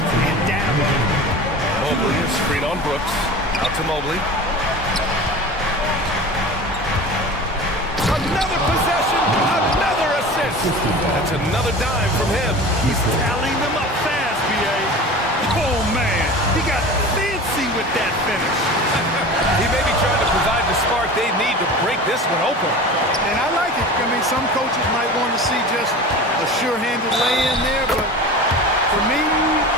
and down. Mobley is screen on Brooks. Out to Mobley. Another possession, another assist. That's another dime from him. He's tallying them up fast, B.A. Oh, man, he got fancy with that finish. He may be trying to provide the spark they need to break this one open. And I like it. I mean, some coaches might want to see just a sure-handed lay-in there, but for me,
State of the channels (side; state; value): both; normal; correlation 0.36